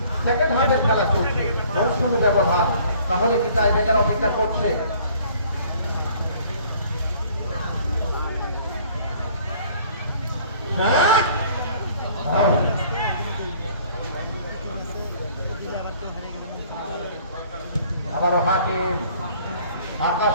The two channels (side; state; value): both; inverted; correlation -0.55